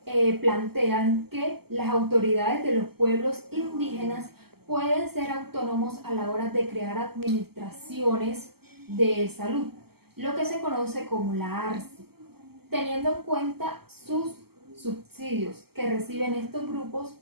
plantean que las autoridades de los pueblos indígenas pueden ser autónomos a la hora de crear administraciones de salud, lo que se conoce como la ARSI, teniendo en cuenta sus subsidios que reciben estos grupos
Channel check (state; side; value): late; left; 0.96 ms